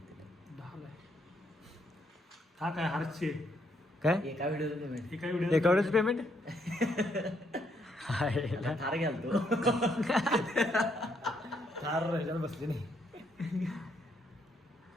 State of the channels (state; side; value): normal; both; correlation 0.73